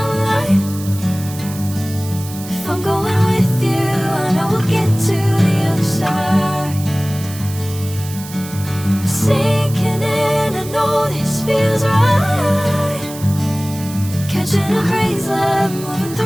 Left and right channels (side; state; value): right; noise; hiss, 14 dB below the sound